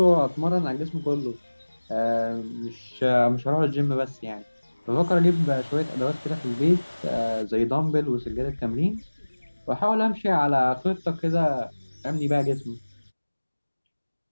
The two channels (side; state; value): both; inverted; correlation -1.00